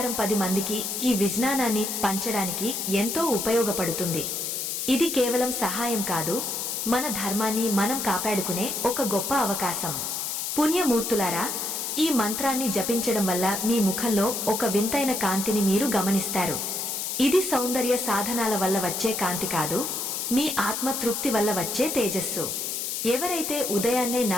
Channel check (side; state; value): left; noise; hiss, 3 dB below the sound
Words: 10 మందికి ఈ విజ్ఞానాన్ని పంచడానికి ఎంతో ఉపయోగపడుతుంది. ఇది కేవలం సహాయం కాదు, మన ధర్మాన్ని మనం కాపాడుకునే ఒక గొప్ప అవకాశం. పుణ్యమూర్తులారా, ఈ మంత్రాన్ని జపించడం వల్ల మీ ముఖంలో ఒక వింతైన కాంతిని మీరు గమనిస్తారు. ఇది సౌందర్య సాధనాల వల్ల వచ్చే కాంతి కాదు, మీ ఆత్మ తృప్తి వల్ల వచ్చే తేజస్సు. ఎవరైతే ఉదయాన్నే